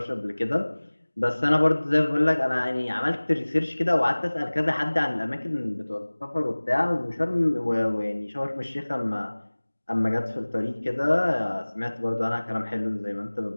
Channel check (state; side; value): inverted; both; correlation -1.00